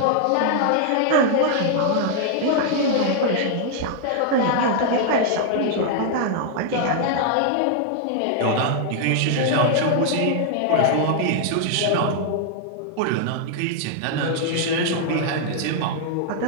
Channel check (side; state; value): both; different; correlation -0.01